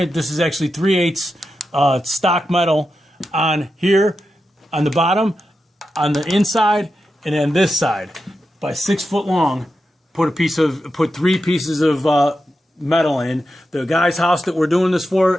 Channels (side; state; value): both; normal; correlation 0.89